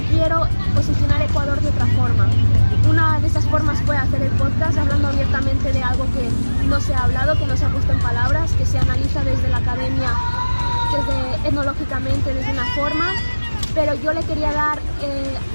quiero posicionar Ecuador de otra forma. Una de esas formas fue hacer el podcast hablando abiertamente de algo que no se ha hablado, que no se ha puesto en palabras, que se analiza desde la academia, desde etnológicamente, desde una forma, pero yo le quería dar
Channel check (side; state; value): both; inverted; correlation -1.00